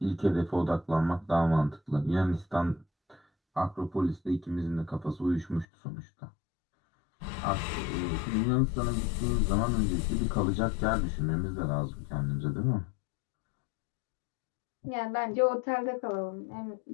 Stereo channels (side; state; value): right; drops out; at 5.7 s